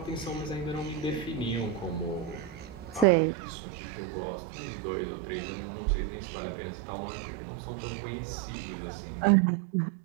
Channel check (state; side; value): drops out; left; at 3.1 s